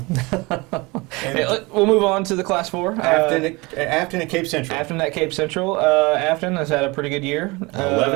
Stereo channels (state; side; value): quieter; left; 24.7 dB